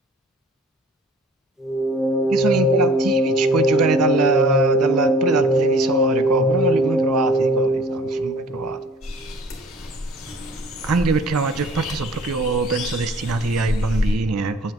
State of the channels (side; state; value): both; normal; correlation 0.50